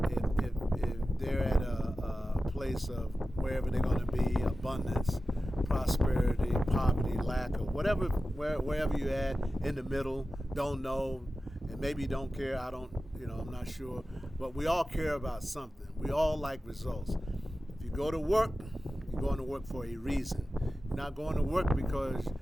If they're at a place of wherever they're going to be, abundance, prosperity, poverty, lack, or whatever, wherever you're at, in the middle, don't know, and maybe don't care, I'm not sure, but we all care about something. We all like results. If you go to work, you're going to work for a reason. You're not going to work because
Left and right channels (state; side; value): normal; both; correlation 0.94